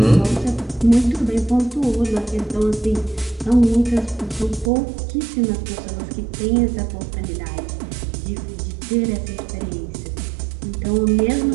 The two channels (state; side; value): drops out; left; at 4.7 s